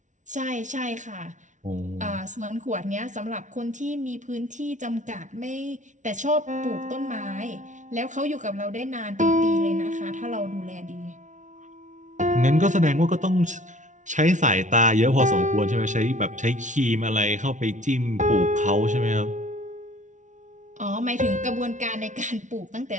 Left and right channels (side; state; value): left; late; 0.36 ms